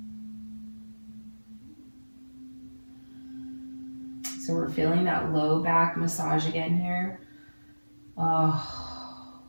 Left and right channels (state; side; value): inverted; both; correlation -1.00